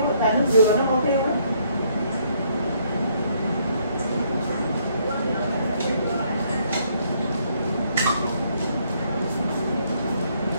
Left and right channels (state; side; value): inverted; both; correlation -0.69